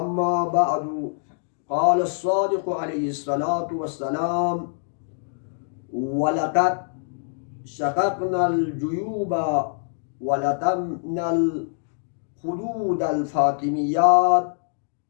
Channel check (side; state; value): right; silent; digital silence